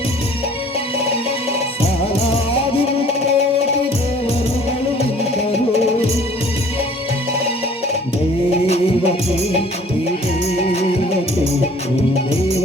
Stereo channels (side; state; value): both; normal; correlation 0.52